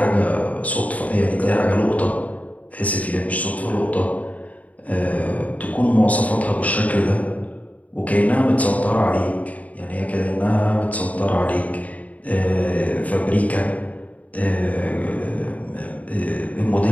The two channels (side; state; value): right; late; 0.071 ms